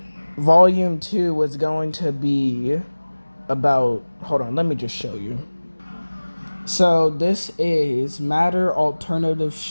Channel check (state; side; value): inverted; both; correlation -1.00